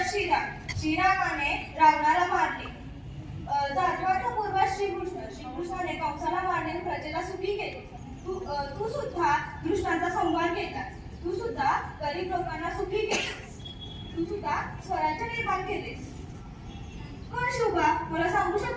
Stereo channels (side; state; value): both; identical; correlation 1.00